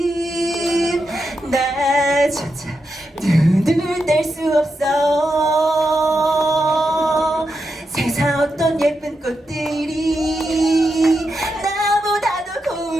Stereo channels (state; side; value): normal; both; correlation 0.86